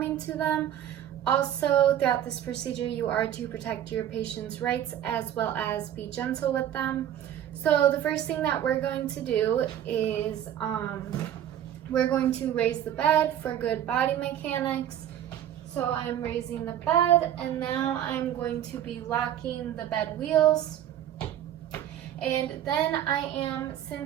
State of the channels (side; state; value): left; quieter; 10.9 dB